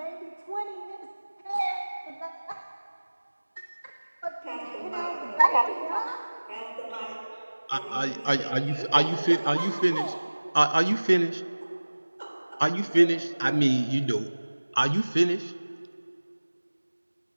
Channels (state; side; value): inverted; both; correlation -1.00